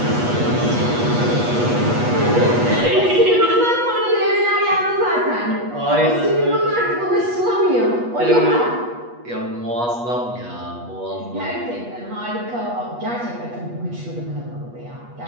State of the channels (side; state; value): left; late; 8.3 ms